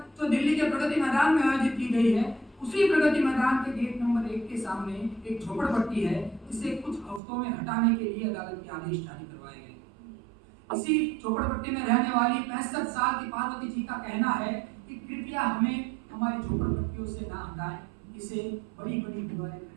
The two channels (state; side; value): drops out; left; at 7.2 s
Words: जो दिल्ली के प्रगति मैदान में आयोजित की गई है, उसी प्रगति मैदान के गेट नंबर 1 के सामने एक झोपड़पट्टी है जिसे कुछ हफ्तों में हटाने के लिए अदालत के आदेश जारी करवाए गए। इसी झोपड़पट्टी में रहने वाली 65 साल की पार्वती जी का कहना है कि कृपया हमें हमारी झोपड़पट्टियों से ना हटाएं, इसे बड़ी बड़ी दीवारें